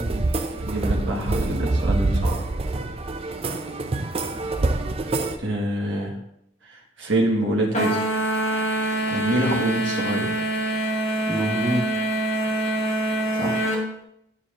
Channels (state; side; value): normal; both; correlation 0.61